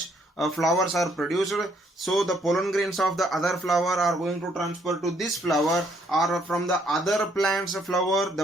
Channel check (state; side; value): normal; both; correlation 0.68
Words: flowers are produced, so the pollen grains of the other flower are going to transfer to this flower, or from the other plant's flower